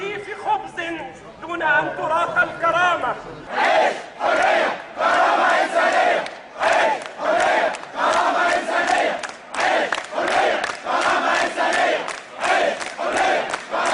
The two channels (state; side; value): identical; both; correlation 1.00